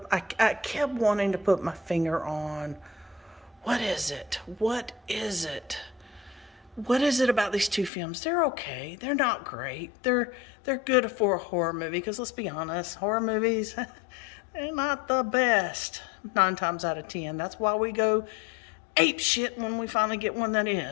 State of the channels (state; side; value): drops out; right; at 7.9 s